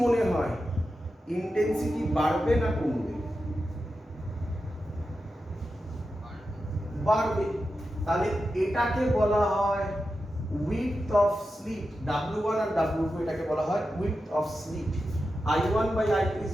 মনে হয় ইন্টেন্সিটি বাড়বে না কমবে? বাড়বে। তাহলে এটাকে বলা হয় width of slit, W1 R W2 এটাকে বলা হয় width of slit। I1 by I2 is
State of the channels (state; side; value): normal; both; correlation 0.90